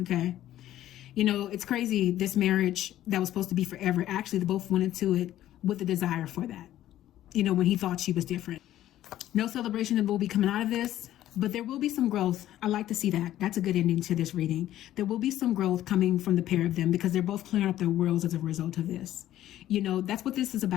Okay. You know, it's crazy. This marriage that was supposed to be forever, actually, they both went into it with a desire for that. You know, when he thought she was different. No celebration will be coming out of this, but there will be some growth. I like to see that. That's a good ending to this reading. There will be some growth coming from the pair of them because they're both clearing up their worlds as a result of this. You know, that's what this is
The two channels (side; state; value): right; quieter; 13.1 dB